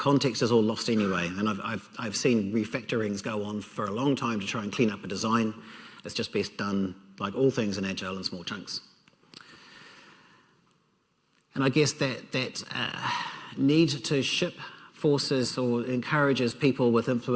is all lost anyway. And I've seen refactorings go on for a long time to try and clean up a design. It's just best done, like all things in Agile, in small chunks. And I guess that need to ship forces or encourages people with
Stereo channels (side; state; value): both; identical; correlation 1.00